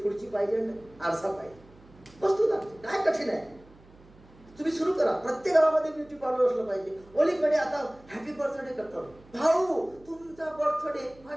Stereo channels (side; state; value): right; noise; hum, 25 dB below the sound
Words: खुर्ची पाहिजे, आरसा पाहिजे, वस्तू लागते, काय कठीण आहे. तुम्ही सुरू करा, प्रत्येक गावामध्ये ब्युटी पार्लर असलं पाहिजे. ओलीकडे आता हॅपी बर्थडे करतात, भाऊ तुमचा बर्थडे